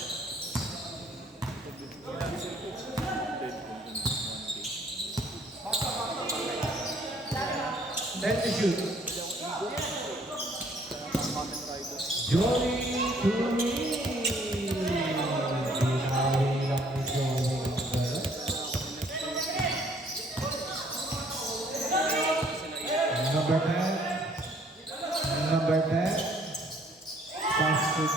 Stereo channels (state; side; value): normal; both; correlation 0.61